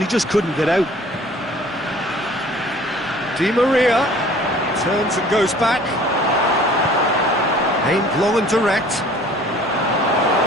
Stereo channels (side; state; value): both; normal; correlation 0.50